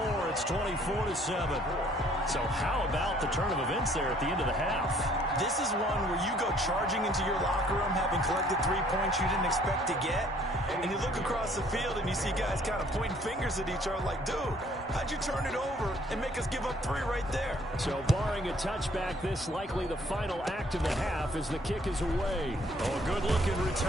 It's 24-7. So how about the turn of events there at the end of the half? This is one where you go charging into your locker room having collected 3 points you didn't expect to get, and you look across the field and you see guys kind of pointing fingers at each other like, dude, how'd you turn it over and make us give up 3 right there? So barring a touchback, this likely the final act of the half as the kick is away. Oh, a good-looking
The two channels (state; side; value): normal; both; correlation 0.60